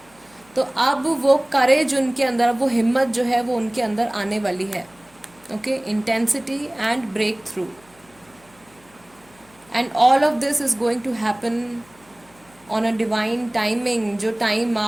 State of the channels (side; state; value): left; noise; hum, 30 dB below the sound